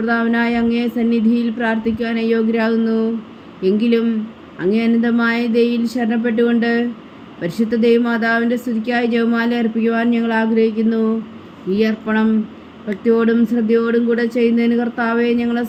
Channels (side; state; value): both; identical; correlation 1.00